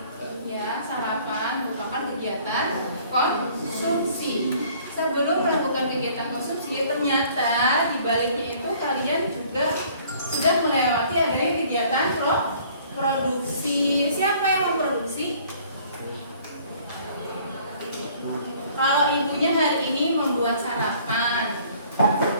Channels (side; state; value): both; inverted; correlation -0.56